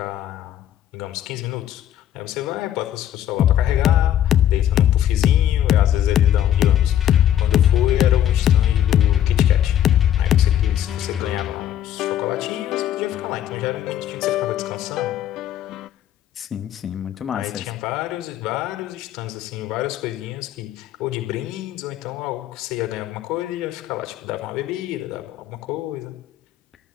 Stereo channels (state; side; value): quieter; right; 11.0 dB